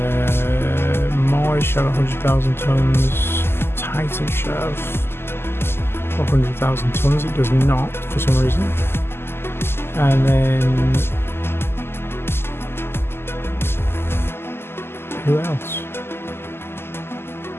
Mars should have 100,000 tons. Titan should have 100,000 tons. It does not for some reason. And then who else?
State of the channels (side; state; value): right; late; 0.12 ms